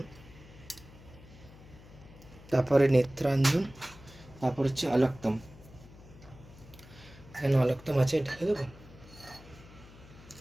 তারপরে নেত্রাঞ্জন, তারপর হচ্ছে অলক্তম। এখানে অলক্তম আছে, ঢেকে দেবো।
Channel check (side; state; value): left; noise; hum, 20 dB below the sound